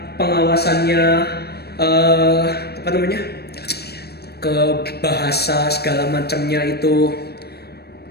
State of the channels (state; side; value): late; right; 0.47 ms